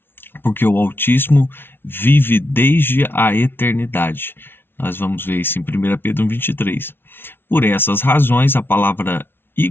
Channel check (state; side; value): late; right; 0.11 ms